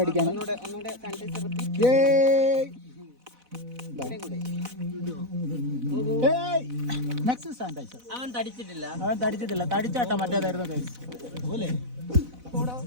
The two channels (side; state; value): left; late; 4.0 ms